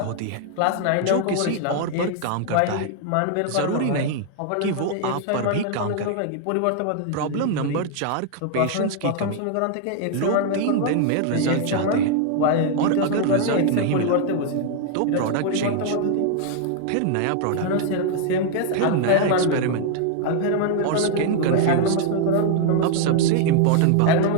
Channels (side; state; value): both; different; correlation 0.00